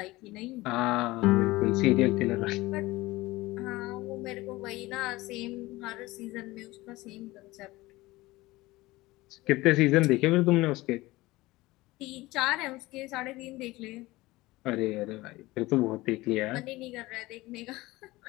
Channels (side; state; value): right; quieter; 19.7 dB